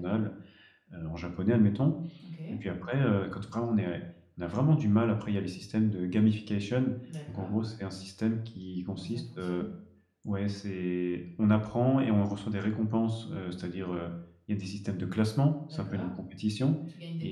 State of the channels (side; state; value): both; identical; correlation 1.00